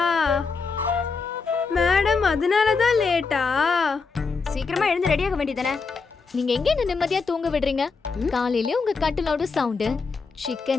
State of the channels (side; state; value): right; quieter; 4.7 dB